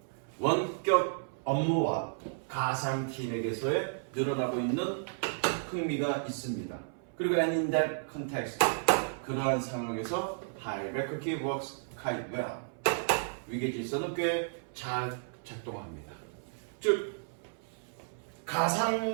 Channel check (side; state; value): left; silent; 56 dB below the other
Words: 원격 업무와 가상팀에게서의 늘어나고 있는 흥미가 있습니다. 그리고 and in that context, 그러한 상황에서 hierarchy works quite well. 위계 질서는 꽤 잘 작동합니다. 즉,